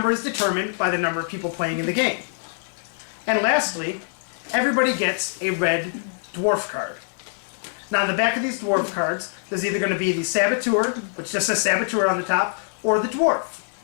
is determined by the number of people playing in the game. And lastly, everybody gets a red dwarf card. Now on the back of these dwarf cards, there's either going to be the Saboteur, which just says Saboteur on the top, or the dwarf.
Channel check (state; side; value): silent; right; 63 dB below the other